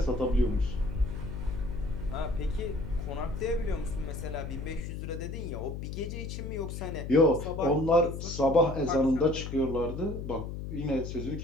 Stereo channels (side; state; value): left; noise; hum, 6 dB below the sound